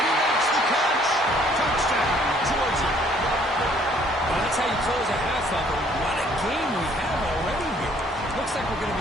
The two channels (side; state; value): both; normal; correlation 0.61